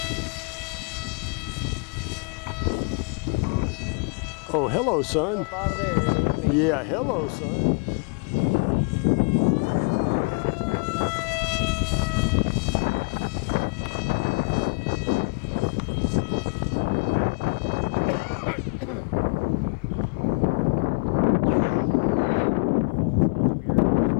Oh, hello, son. Up out of there, yeah, hello, son.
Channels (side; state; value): right; quieter; 33.6 dB